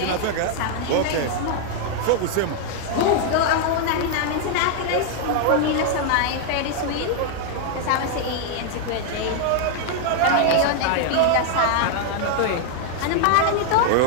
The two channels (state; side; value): different; both; correlation 0.00